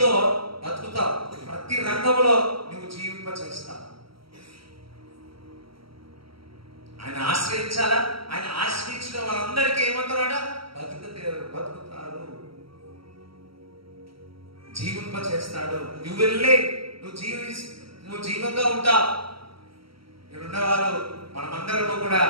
బతుకుతావు, ప్రతి రంగంలో నువ్వు జీవింప చేస్తావు. ఆయన ఆశ్రయించాలా? ఆయన ఆశ్రయించిన వాళ్ళందరికీ ఏమంటారట? బతుకుతారు, జీవింప చేస్తాడు. నువ్వు వెళ్ళే, నువ్వు జీవంగా ఉంటావు. ఇక్కడున్నవారు మనమందరము కూడా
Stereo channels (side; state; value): left; late; 0.75 ms